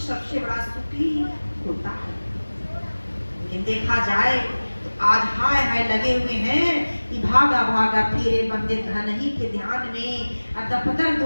सबसे बड़ा सुखी होता है। लेकिन देखा जाए तो आज हाय हाय लगे हुए हैं कि भागा भागा फिरे बंदे धन ही के ध्यान में, दफ्तर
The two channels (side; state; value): both; inverted; correlation -1.00